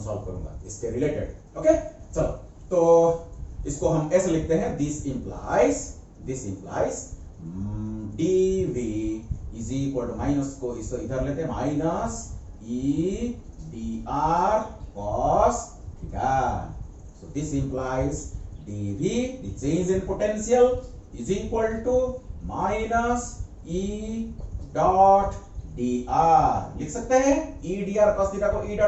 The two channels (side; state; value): both; identical; correlation 1.00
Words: सॉल्व करूंगा इसके रिलेटेड. ओके. चलो, तो इसको हम ऐसे लिखते हैं, this implies dv is equal to minus को इसको इधर लेते हैं, minus e dr cos theta. So this implies dv, the change in potential, is equal to minus e dot dr. लिख सकते हैं e dr cos थीटा को e